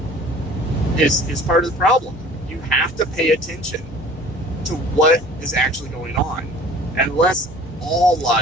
is part of the problem. You have to pay attention to what is actually going on. Unless all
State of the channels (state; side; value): normal; both; correlation 0.47